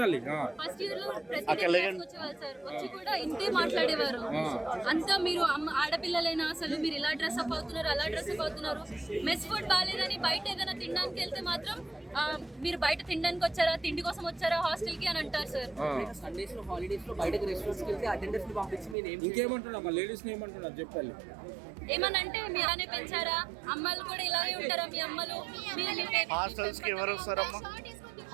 ఫస్ట్ ఇయర్ లో ప్రతి డే క్లాస్ కి వచ్చేవాళ్ళు సార్. వచ్చి కూడా ఇంతే మాట్లాడేవారు. అంతా మీరు ఆడపిల్లలైనా అసలు మీరు ఇలా డ్రెస్ అప్ అవుతున్నారు, అలా డ్రెస్ అప్ అవుతున్నారు. మెస్ ఫుడ్ బాగాలేదని బయట ఏదైనా తినడానికి వెళ్తే మాత్రం మీరు బయట తినడానికి వచ్చారా, తిండి కోసం వచ్చారా హాస్టల్ కి అని అంటారు సార్. సండేస్ లో హాలిడేస్ లో బయటకి రెస్టారెంట్స్ కి వెళ్తే అటెండర్స్ ని పంపించి మీరు ఇంకేమంటున్నా లేడీస్ ని ఏమంటున్నా చెప్పాలి. ఏమనంటే మీరానే పెంచారా, అమ్మాయిలు కూడా ఇలాగే ఉంటారా, మీ అమ్మలు హాస్టల్స్ కి ఎవరు వస్తారమ్మా?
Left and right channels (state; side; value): drops out; left; at 18.9 s